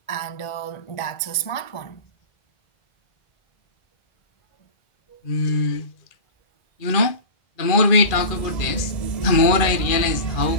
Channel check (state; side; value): late; right; 2.4 ms